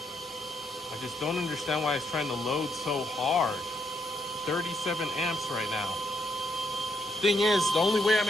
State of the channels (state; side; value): normal; both; correlation 0.76